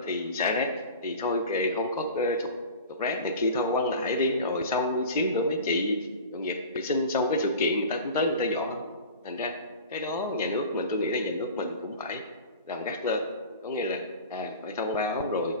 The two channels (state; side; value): inverted; both; correlation -0.36